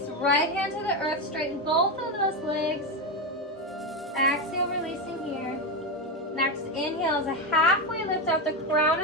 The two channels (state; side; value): normal; both; correlation 0.12